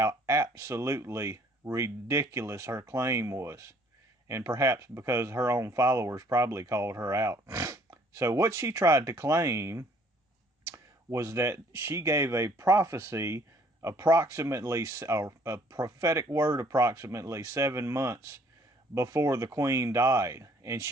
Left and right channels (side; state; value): both; normal; correlation 0.60